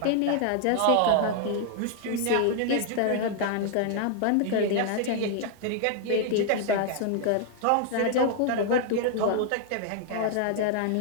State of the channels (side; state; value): both; different; correlation 0.00